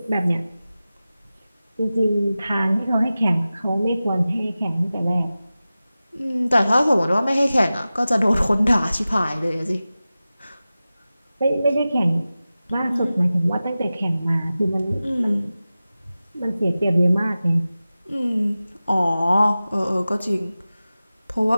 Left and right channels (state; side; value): inverted; both; correlation -0.96